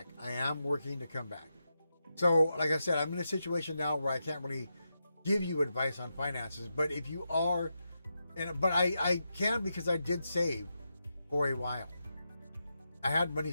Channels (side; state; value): both; inverted; correlation -0.87